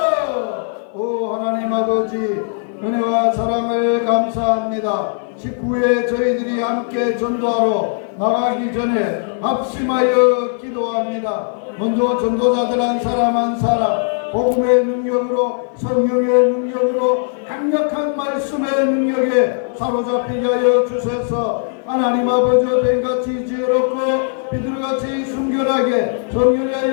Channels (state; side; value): silent; right; 56 dB below the other